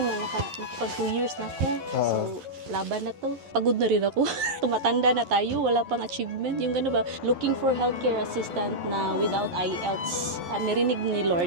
nakapag 2 years na ako. So, laban na to. Pagod na rin ako. Tumatanda na tayo, wala pang achievement. Yung gano'n ba, looking for healthcare assistant na without IELTS. At narinig ni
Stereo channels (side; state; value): left; late; 11 ms